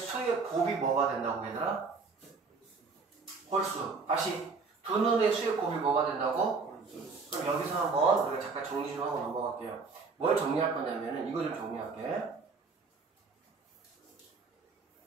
곱이 뭐가 된다고 얘들아? 홀수. 다시 두 눈의 수의 곱이 뭐가 된다고? 그럼 여기서 한번 우리가 잠깐 정리 좀 하고 넘어갈게요. 뭘 정리할 거냐면은 이거 좀 정리할게.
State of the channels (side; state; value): left; quieter; 4.5 dB